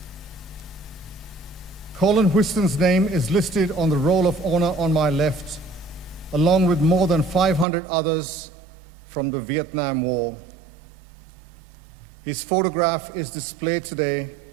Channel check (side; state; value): left; drops out; at 7.7 s